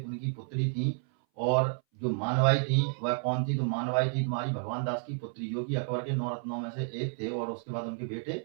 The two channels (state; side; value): silent; left; 57 dB below the other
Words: उनकी पुत्री थी। और जो मानवाई थी वह कौन थी? तो मानवाई थी तुम्हारी भगवान दास की पुत्री, जो कि अकबर के 9 रत्नों में से एक थे। और उसके बाद उनके बेटे